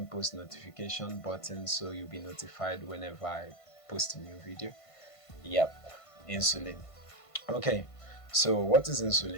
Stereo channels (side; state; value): right; late; 1.5 ms